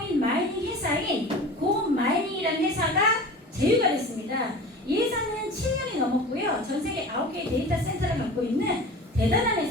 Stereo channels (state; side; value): normal; both; correlation 0.36